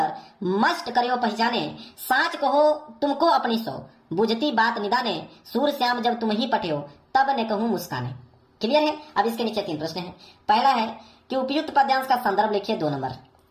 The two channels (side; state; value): both; identical; correlation 1.00